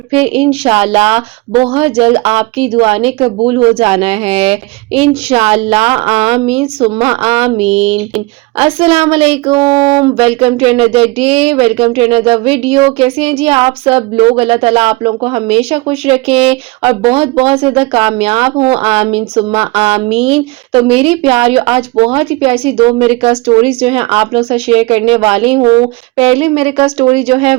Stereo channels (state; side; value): quieter; left; 23.9 dB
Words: फिर इंशाअल्लाह बहुत जल्द आपकी दुआ ने कबूल हो जाना है। इंशाअल्लाह आमीन सुम्मा आमीन। अस्सलाम वालेकुम, welcome to another day, welcome to another video. कैसे हैं जी आप सब लोग? अल्लाह ताला आप लोगों को हमेशा खुश रखें और बहुत बहुत ज़्यादा कामयाब हों, आमीन सुम्मा आमीन। तो मेरी प्यारियों, आज बहुत ही प्यारी सी 2 मिरेकल स्टोरीज जो हैं आप लोगों से शेयर करने वाली हूँ। पहली मिरेकल स्टोरी जो है